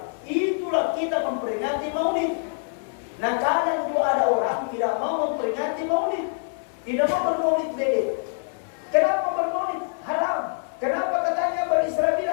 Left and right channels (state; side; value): silent; right; digital silence